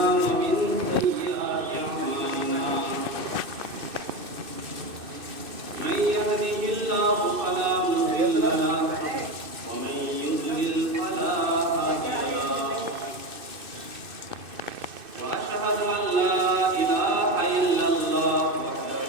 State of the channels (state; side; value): late; left; 2.6 ms